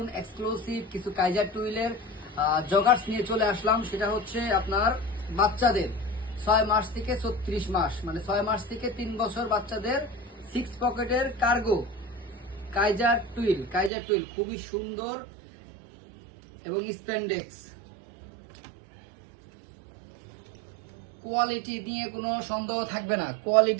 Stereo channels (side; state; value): left; drops out; at 13.9 s